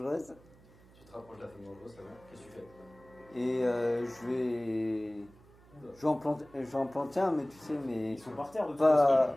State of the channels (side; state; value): right; noise; hum, 25 dB below the sound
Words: Tu te rapproches de la femme dangereuse, ça va? Qu'est-ce que tu fais? Et je vais. Je vais en planter un, mais tu sais, mais Ils sont par terre de toute façon.